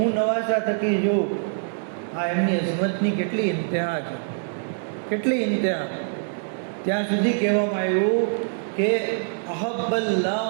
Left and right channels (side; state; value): left; silent; digital silence